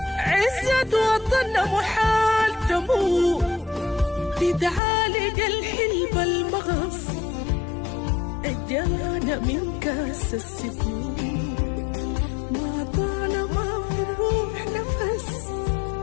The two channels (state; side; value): drops out; right; at 4.8 s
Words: عزت وطننا محال تموت، بتعالج الحلب المغص اجانا من كاس السكون، ما طالما في الروح نفس